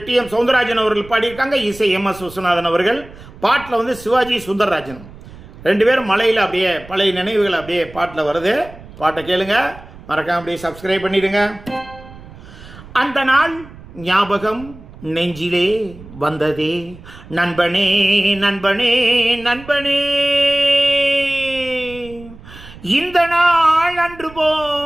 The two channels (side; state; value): right; noise; rumble, 18 dB below the sound